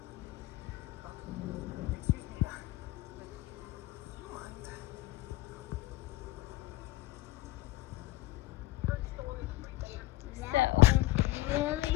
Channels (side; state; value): right; quieter; 17.9 dB